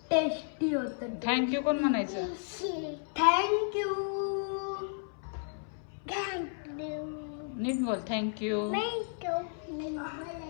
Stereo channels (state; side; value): silent; right; 56 dB below the other